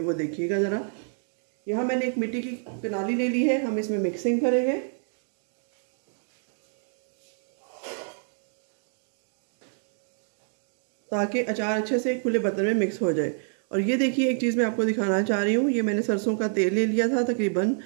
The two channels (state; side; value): silent; left; 60 dB below the other